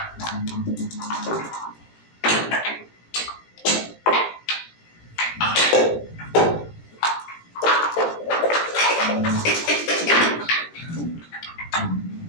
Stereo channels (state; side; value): late; right; 17 ms